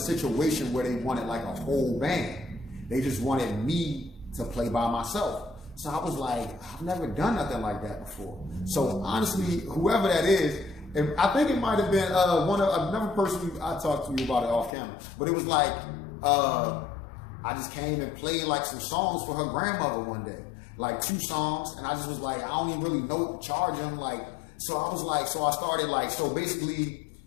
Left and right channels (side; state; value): right; drops out; at 14.7 s